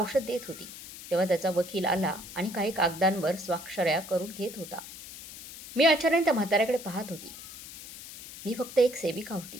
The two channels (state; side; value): noise; left; hiss, 14 dB below the sound